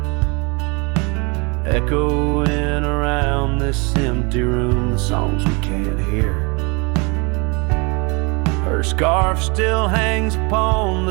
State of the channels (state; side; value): quieter; left; 29.7 dB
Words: echoing around this empty room the songs we can't hear. Her scarf still hangs upon